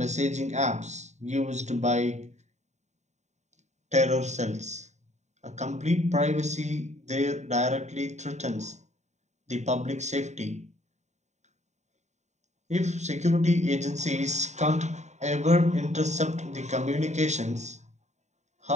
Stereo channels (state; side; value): late; left; 0.34 ms